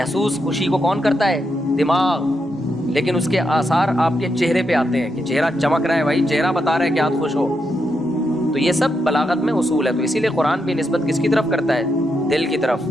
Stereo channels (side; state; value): both; normal; correlation 0.83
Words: خوشی کو کون کرتا ہے, دماغ. لیکن اس کے آثار آپ کے چہرے پہ آتے ہیں کہ چہرہ چمک رہا ہے, بھائی چہرہ بتا رہا ہے کہ آپ خوش ہو. تو یہ سب بلاغت میں اصول ہے. تو اسی لیے قرآن بھی نسبت کس کی طرف کرتا ہے, دل کی طرف,